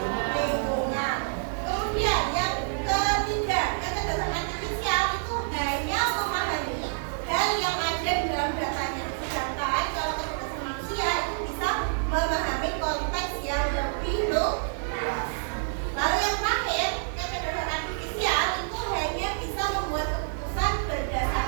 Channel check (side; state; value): left; silent; digital silence